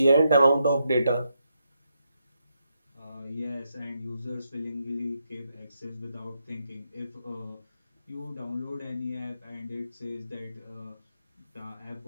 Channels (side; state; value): both; inverted; correlation -0.81